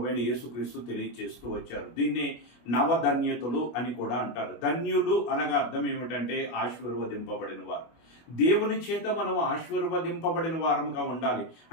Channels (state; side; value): late; right; 25 ms